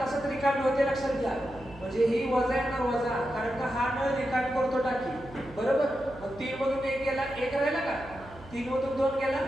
रिकामी होते. लक्षात घ्या. म्हणजे ही वजा येणार, वजा, कारण का हा नळ रिकामी करतो टाकी, बरोबर? मग 3 मधून 1 गेला, 1 राहिला का? 3 मधून 2 गेला,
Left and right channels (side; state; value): right; noise; hum, 19 dB below the sound